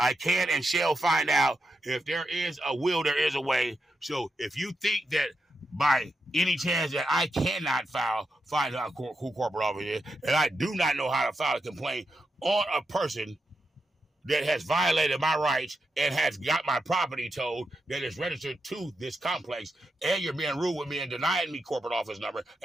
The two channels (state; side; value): normal; both; correlation 0.86